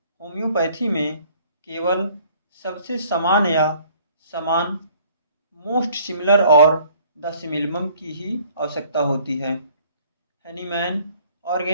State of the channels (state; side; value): inverted; both; correlation -0.58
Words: होम्योपैथी में केवल सबसे समान या समान, मोस्ट सिमिलर और द सिमिलम की ही आवश्यकता होती है। हैनीमैन